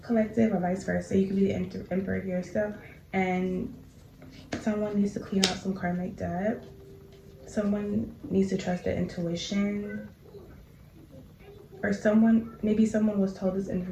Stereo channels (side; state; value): both; identical; correlation 1.00